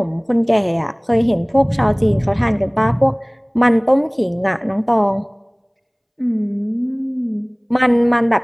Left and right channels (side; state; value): both; identical; correlation 1.00